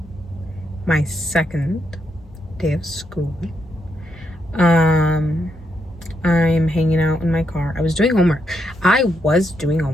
My second day of school. I'm hanging out in my car. I was doing homework.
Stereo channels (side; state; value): both; normal; correlation 0.80